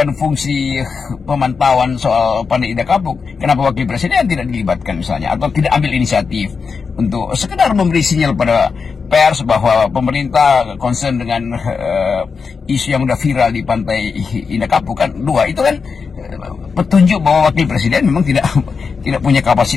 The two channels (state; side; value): quieter; right; 5.3 dB